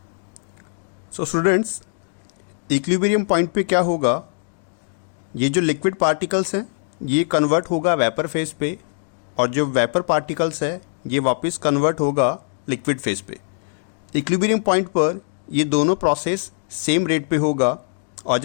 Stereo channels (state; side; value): silent; right; digital silence